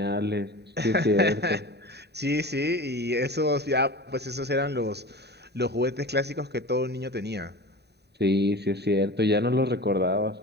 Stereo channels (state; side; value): late; left; 0.48 ms